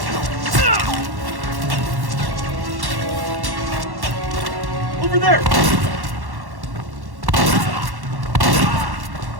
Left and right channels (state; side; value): late; left; 1.1 ms